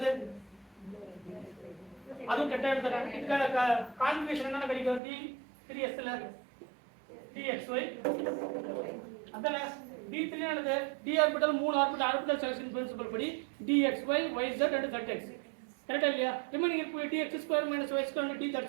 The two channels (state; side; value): drops out; left; at 5.0 s